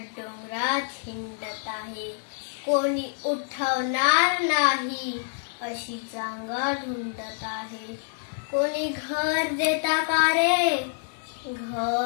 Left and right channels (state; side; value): silent; right; 60 dB below the other